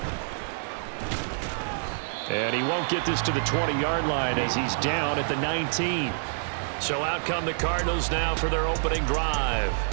And he won't get this to the 20-yard line as he's down at the 19. So out come the Cardinals now for their opening drive.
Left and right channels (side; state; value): left; silent; digital silence